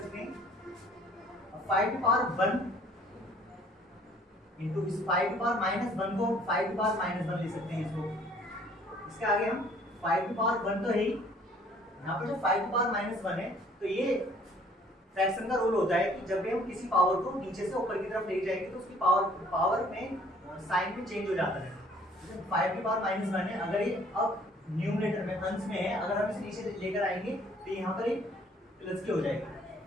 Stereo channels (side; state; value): both; normal; correlation 0.58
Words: हैं। 5 की पावर 1 इंटू इस 5 की पावर माइनस 1 को 5 की पावर माइनस 1 लिख सकते हैं इसको। इसके आगे हम 5 की पावर 1 तो है ही, यहाँ पर जो 5 की पावर माइनस 1 है, तो ये फ्रैक्शन का रूल होता है कि जब भी हम किसी पावर को नीचे से ऊपर की तरफ ले जाएंगे तो उसकी पावर में साइन भी चेंज हो जाता है। जैसे 5 की पावर माइनस 1 है, अगर ये अब न्यूमरेटर में अंश में है, अगर हम इसे नीचे लेकर आएंगे तो यहाँ पर एक प्लस की हो जाएगी।